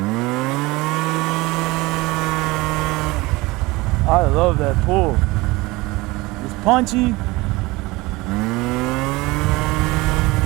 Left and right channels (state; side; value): quieter; left; 21.8 dB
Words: I love that pull. It's punchy.